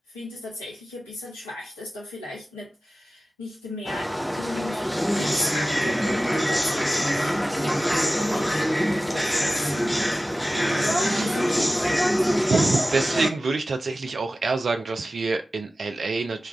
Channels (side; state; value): both; normal; correlation 0.95